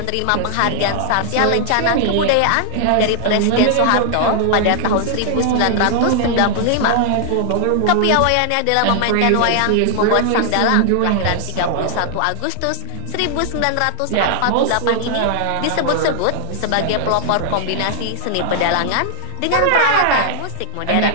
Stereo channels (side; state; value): both; different; correlation 0.00